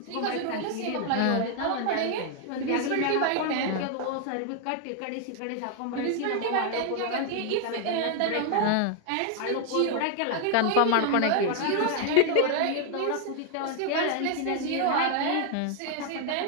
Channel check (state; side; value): different; both; correlation 0.00